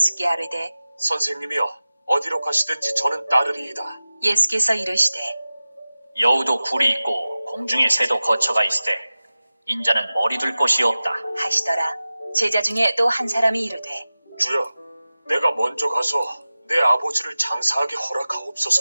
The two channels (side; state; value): both; inverted; correlation -0.96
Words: 아뢰되 선생님이여, 어디로 가시든지 저는 따르리이다. 예수께서 이르시되 여우도 굴이 있고 공중의 새도 거처가 있으되 인자는 머리 둘 곳이 없다 하시더라. 제자 중에 또 한 사람이 이르되 주여, 내가 먼저 가서 내 아버지를 장사하게